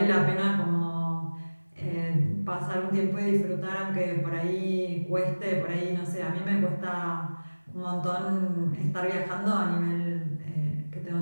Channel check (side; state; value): both; inverted; correlation -1.00